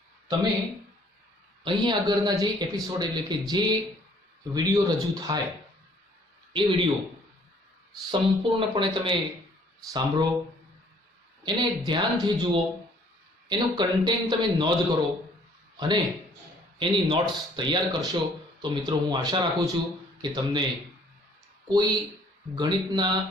તમે અહીં આગળના જે એપિસોડ એટલે કે જે વિડીયો રજૂ થાય એ વિડીયો સંપૂર્ણપણે તમે સાંભળો, એને ધ્યાનથી જુઓ, એનું કન્ટેન્ટ તમે નોંધ કરો અને એની નોટ્સ તૈયાર કરશો તો મિત્રો હું આશા રાખું છું કે તમને કોઈ ગણિતના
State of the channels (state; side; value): normal; both; correlation 0.59